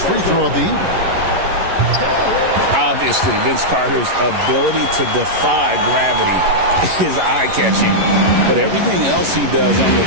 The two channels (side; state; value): left; late; 11 ms